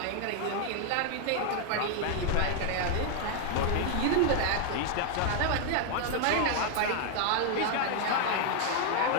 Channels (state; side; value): different; both; correlation 0.00